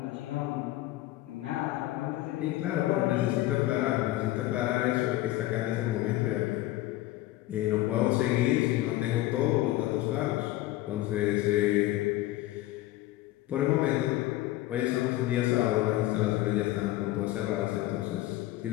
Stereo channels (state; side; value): quieter; right; 16.1 dB